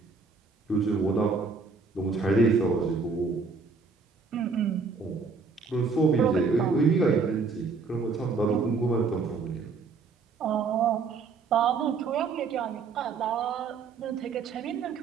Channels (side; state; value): left; quieter; 4.7 dB